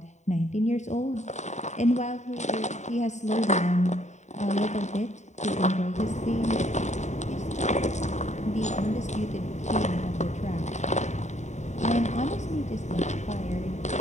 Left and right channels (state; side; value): late; right; 0.34 ms